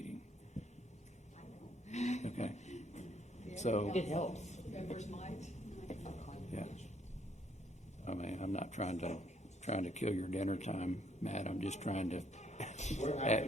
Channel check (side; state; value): both; normal; correlation 0.68